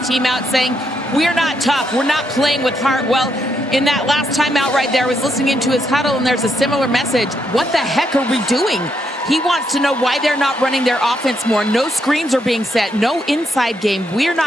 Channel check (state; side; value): normal; both; correlation 0.78